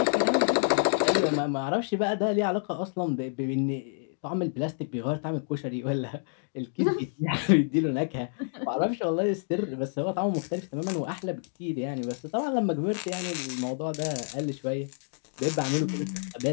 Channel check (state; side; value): silent; right; digital silence